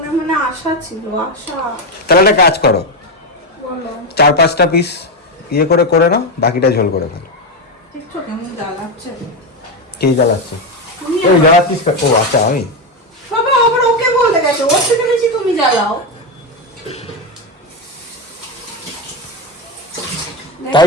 মনে আশা ছিল, আশা। তাহলে একটা কাজ করো, বলো 4-5টা পিস ইয়ে করে করে নাও, বাকিটা ঝোল করে ফেলো। দেখছো কেমন জ্বালাচ্ছে? কে জ্বালাচ্ছে? ওই জ্বালাচ্ছিস? ও আচ্ছা, আমি বাবা আবার ওকে বলে গেছে, ওর থেকে বেশি তুমি জ্বালাও।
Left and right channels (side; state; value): both; normal; correlation 0.10